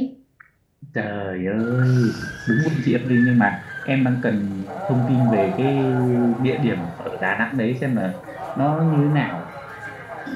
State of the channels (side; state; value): both; identical; correlation 1.00